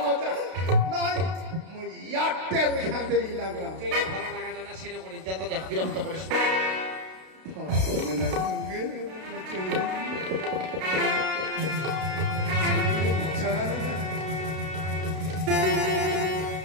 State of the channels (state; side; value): late; left; 32 ms